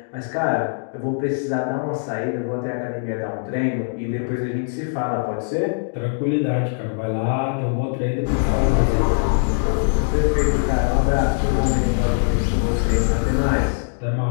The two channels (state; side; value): silent; right; digital silence